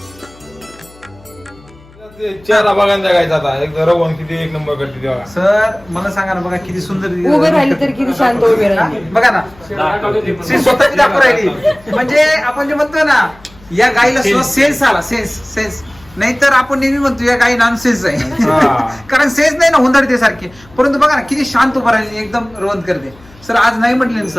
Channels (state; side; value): noise; left; hum, 25 dB below the sound